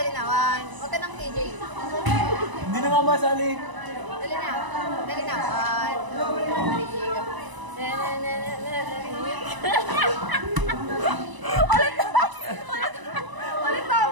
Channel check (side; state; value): left; late; 1.0 ms